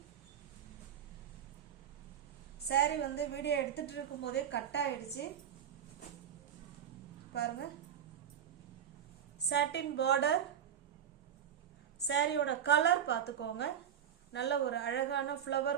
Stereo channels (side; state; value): left; quieter; 9.1 dB